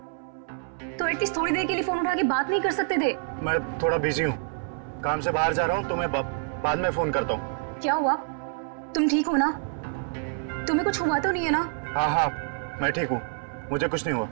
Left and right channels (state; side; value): silent; left; 60 dB below the other